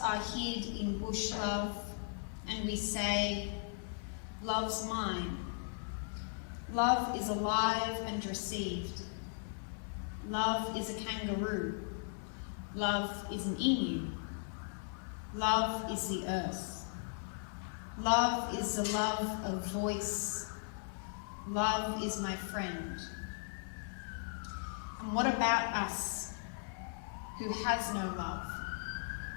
are hid in bush love, and we say, love's mine. Love is alive and received. Love is a kangaroo. Love is an emu. Love is the earth. Love is the love of voice. Love is my friend. And what about us who has no love?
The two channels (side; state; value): right; silent; digital silence